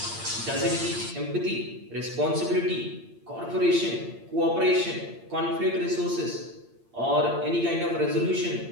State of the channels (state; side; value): late; left; 8.7 ms